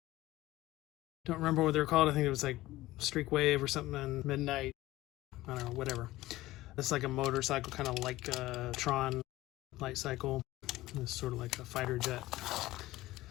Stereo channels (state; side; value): quieter; right; 17.2 dB